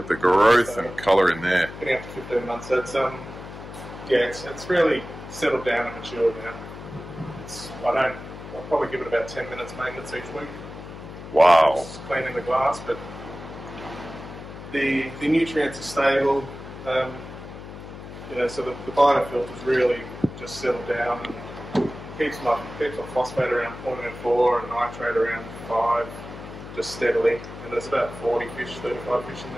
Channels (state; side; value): noise; left; hum, 13 dB below the sound